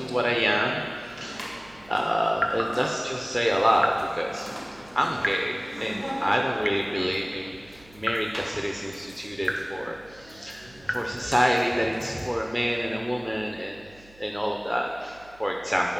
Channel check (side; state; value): right; noise; hum, 25 dB below the sound